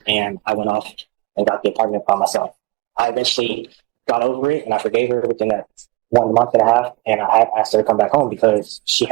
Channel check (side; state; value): left; quieter; 22.8 dB